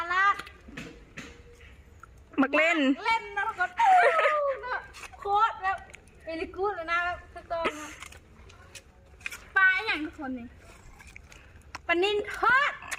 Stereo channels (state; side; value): identical; both; correlation 1.00